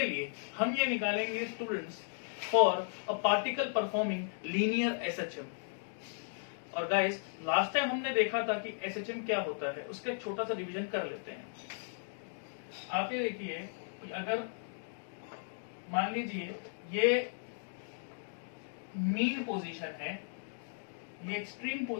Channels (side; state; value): right; silent; digital silence